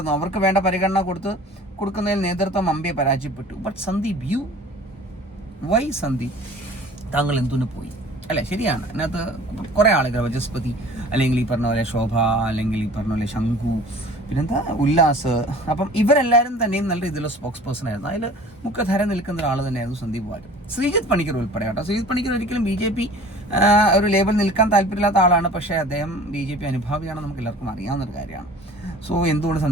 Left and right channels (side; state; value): both; normal; correlation 0.46